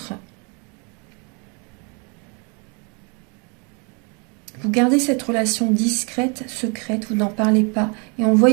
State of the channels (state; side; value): quieter; left; 34.0 dB